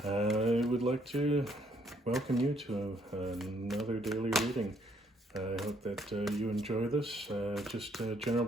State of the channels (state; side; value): normal; both; correlation 0.68